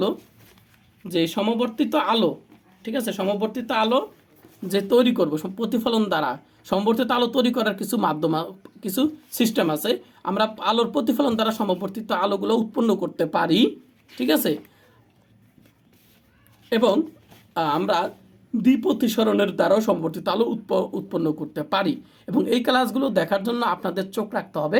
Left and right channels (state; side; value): identical; both; correlation 1.00